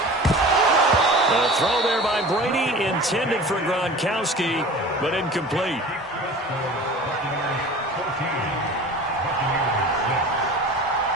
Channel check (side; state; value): both; normal; correlation 0.39